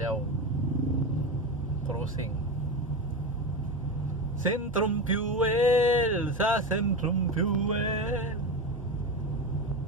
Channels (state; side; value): normal; both; correlation 0.20